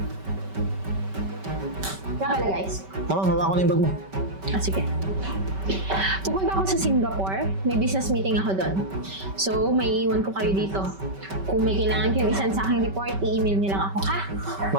Nga pala guys. Ma'am, hawa ko na yung bag mo. Sige. Pupunta ako sa Singapore. May business meeting ako doon. So, may iwan ko kayo dito. Kung may kailangan kayong isan sa aking report, i-email niyo lang ako, ha?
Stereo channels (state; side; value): late; left; 5.2 ms